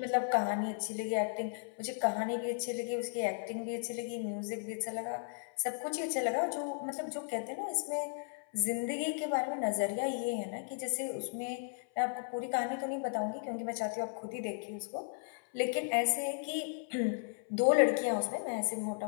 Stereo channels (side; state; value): right; silent; 54 dB below the other